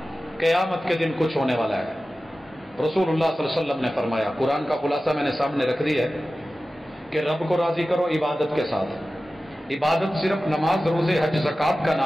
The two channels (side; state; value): both; normal; correlation 0.95